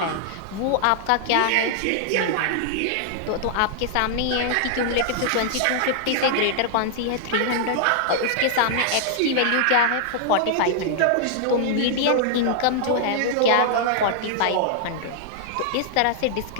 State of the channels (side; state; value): both; different; correlation -0.01